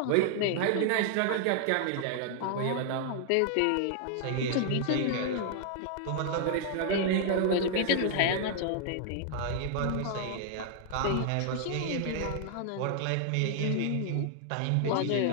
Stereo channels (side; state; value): both; different; correlation -0.01